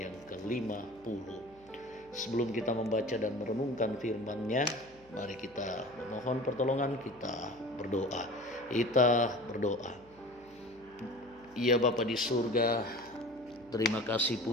yang ke-50. Sebelum kita membaca dan merenungkan firman-Nya, mari kita mohon pertolongan, kita berdoa. Kita berdoa. Ya Bapa di surga, terima kasih,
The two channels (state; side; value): noise; left; hum, 27 dB below the sound